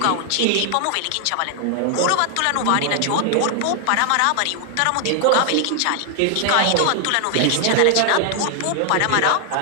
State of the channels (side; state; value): both; different; correlation 0.00